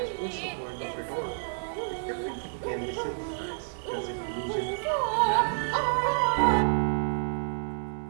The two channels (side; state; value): left; silent; digital silence